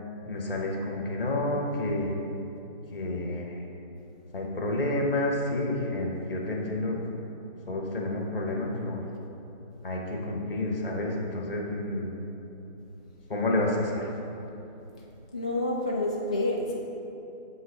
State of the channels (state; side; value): inverted; both; correlation -0.35